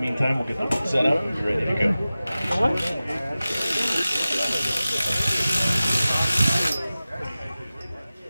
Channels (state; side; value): inverted; both; correlation -0.96